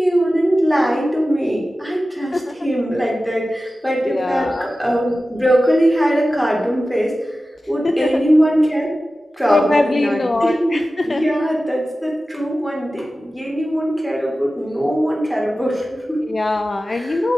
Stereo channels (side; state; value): both; normal; correlation 0.95